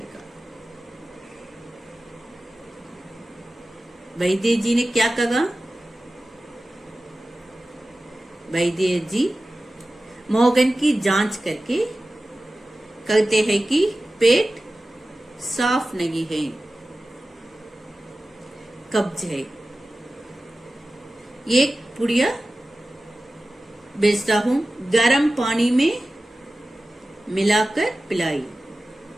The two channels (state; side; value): normal; both; correlation 0.95